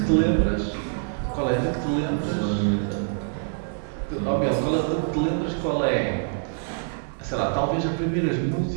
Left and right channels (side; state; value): left; silent; 57 dB below the other